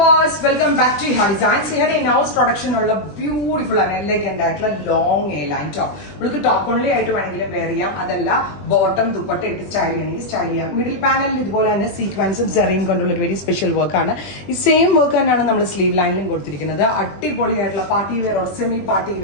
viewers, welcome back to Iha Designs. Here in-house production ഉള്ള beautiful and elegant ആയിട്ടുള്ള long A-line top. നമുക്ക് top only ആയിട്ട് വേണമെങ്കിലും wear ചെയ്യാം. അതല്ല bottom ദുപ്പട്ട ഇട്ട് സ്റ്റൈൽ ചെയ്യണമെങ്കിൽ സ്റ്റൈൽ ചെയ്യാം. മിഡിൽ പാനലിൽ ഇതുപോലെ തന്നെ സീക്വൻസും സെറിയും കൊണ്ടുള്ള ഒരു വെരി സ്പെഷ്യൽ വർക്ക് ആണ്. ഈ സെയിം വർക്ക് തന്നെയാണ് നമ്മൾ സ്ലീവ് ലൈനിലും കൊടുത്തിരിക്കുന്നത്. അടിപൊളിയായിട്ടുള്ള party wear or semi party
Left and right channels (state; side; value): late; right; 20 ms